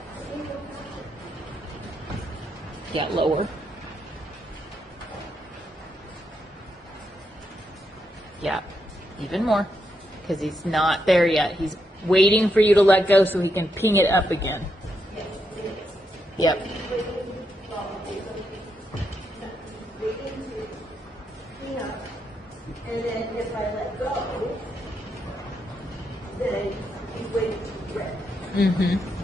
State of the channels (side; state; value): both; normal; correlation 0.81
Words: Yeah, lower. Yeah, even more. Because he's not there yet. He's waiting for you to let go so he can ping it up again. Yep. And then if I let go, then he's waiting to rip